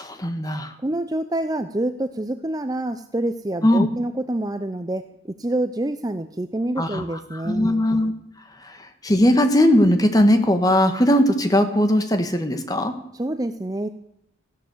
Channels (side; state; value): both; normal; correlation 0.80